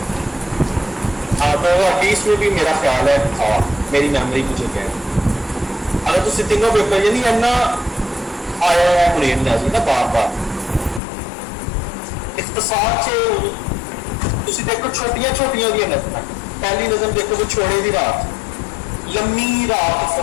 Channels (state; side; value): drops out; right; at 11.0 s